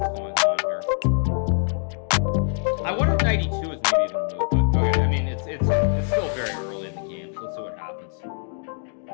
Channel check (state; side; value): silent; right; 63 dB below the other